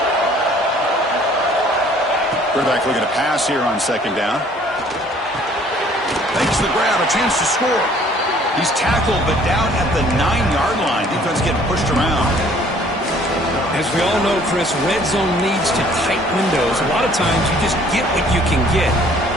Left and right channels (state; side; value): normal; both; correlation 0.57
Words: Quarterback looking to pass here on second down. Makes the grab, a chance to score. He's tackled, but down at the 9-yard line. Defense getting pushed around. As we all know, Chris, red zone leads to tight windows. A lot of times you just get what you can get.